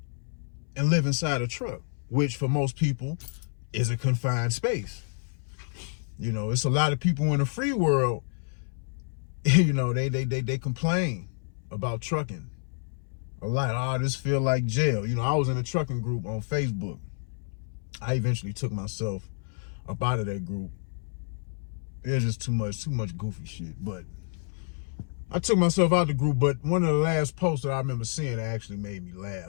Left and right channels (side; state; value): right; silent; 59 dB below the other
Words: and live inside a truck, which for most people is a confined space. It's a lot of people in the free world, they complain about trucking a lot. Oh, this feel like jail. I was in a trucking group on Facebook. I eventually took myself up out of that group. It was just too much goofy shit. But I took myself out of the group. But one of the last posts that I remember seeing that actually made me